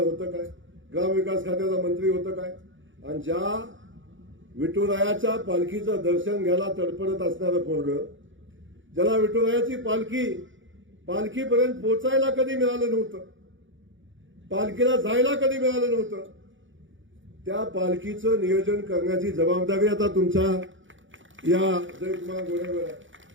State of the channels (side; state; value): left; late; 0.56 ms